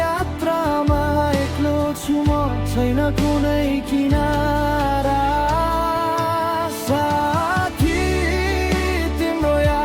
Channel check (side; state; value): both; identical; correlation 1.00